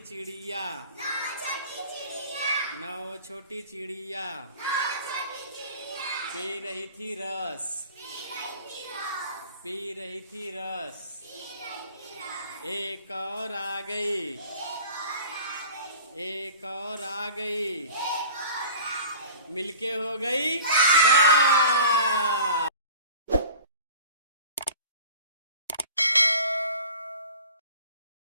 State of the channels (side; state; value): both; inverted; correlation -0.43